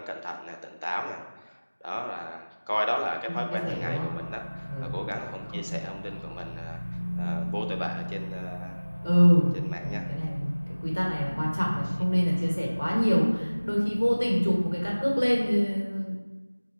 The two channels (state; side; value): inverted; both; correlation -1.00